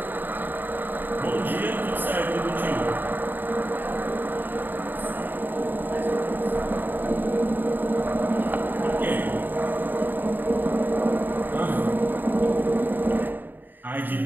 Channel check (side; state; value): left; late; 0.091 ms